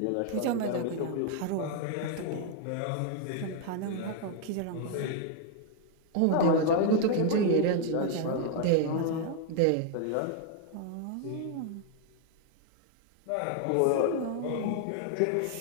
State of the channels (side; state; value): both; different; correlation 0.00